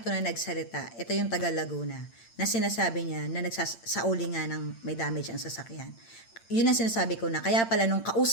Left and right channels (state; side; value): late; right; 8.8 ms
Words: to na nagsalita, ito yung taga Laguna, na sinasabi niya na nagsasauli nga ng may damage ang sasakyan. Yun ang sinasabi ko na, kaya pala nung